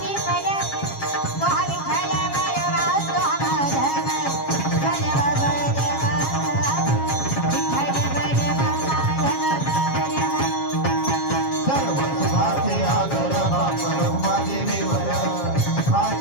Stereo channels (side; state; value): right; late; 7.3 ms